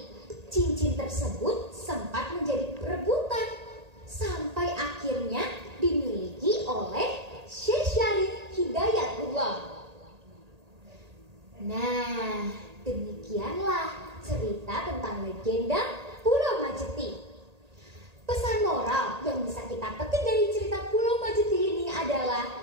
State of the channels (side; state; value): left; late; 1.8 ms